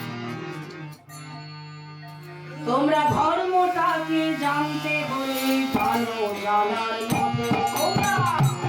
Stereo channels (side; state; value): both; identical; correlation 1.00